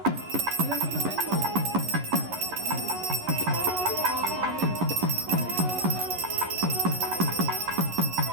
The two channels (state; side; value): late; left; 11 ms